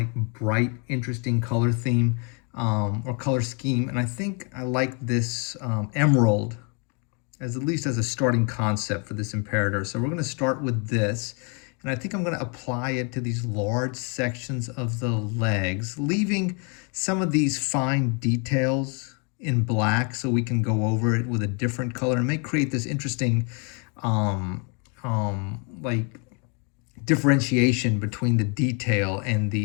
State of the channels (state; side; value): quieter; right; 35.3 dB